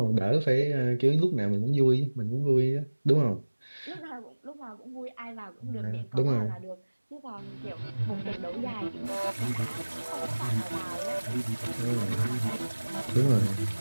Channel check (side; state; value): both; inverted; correlation -1.00